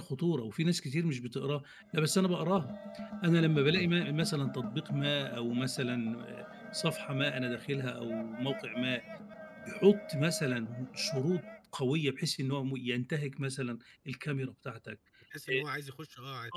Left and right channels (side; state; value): both; identical; correlation 1.00